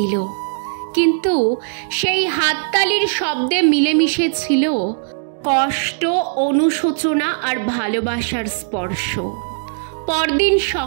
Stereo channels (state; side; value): silent; left; digital silence